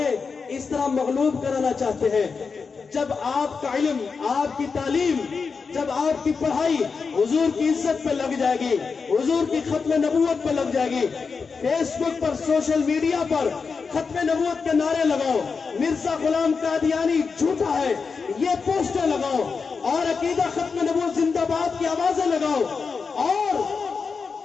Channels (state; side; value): quieter; right; 5.1 dB